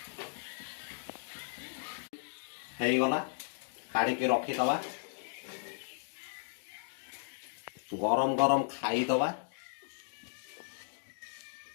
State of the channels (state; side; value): silent; right; digital silence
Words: गला काढ़ी रखीदवा गरम गरम खाईदवा।